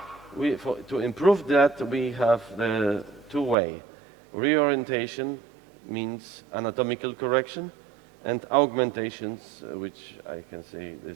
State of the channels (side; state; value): left; drops out; at 3.6 s